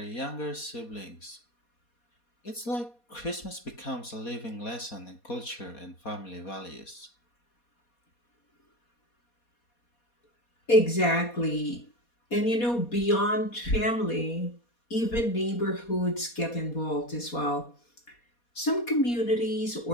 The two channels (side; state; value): right; late; 4.2 ms